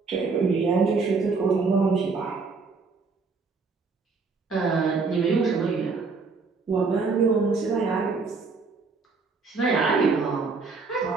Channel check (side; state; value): left; quieter; 4.5 dB